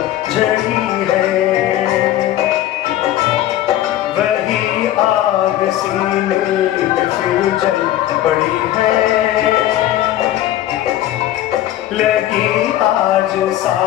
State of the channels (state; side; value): quieter; right; 13.4 dB